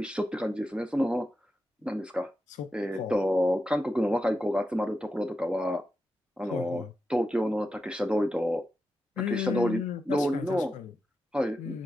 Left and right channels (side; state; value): both; normal; correlation 0.89